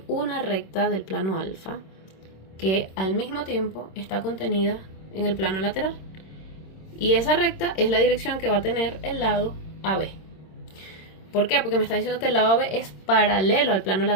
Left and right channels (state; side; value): late; right; 26 ms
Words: una recta del plano alfa que al mismo tiempo está contenida en el plano lateral. Y esa recta es la dirección que va a tener el lado AB. ¿Por qué? Porque me está diciendo que el lado AB es paralelo al plano